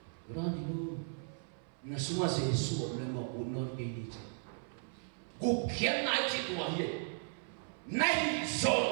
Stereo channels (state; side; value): silent; left; 54 dB below the other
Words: berani lu na semua Jesus memang unor ini mungkin naik citu aja Nahi